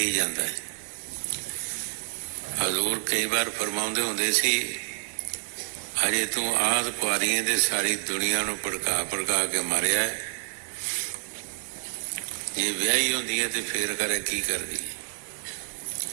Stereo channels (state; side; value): silent; left; digital silence